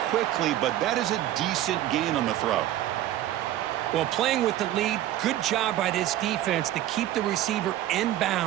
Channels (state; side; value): quieter; left; 13.4 dB